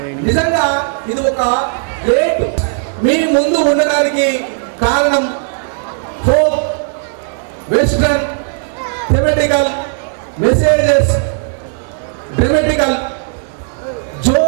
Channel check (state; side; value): silent; left; digital silence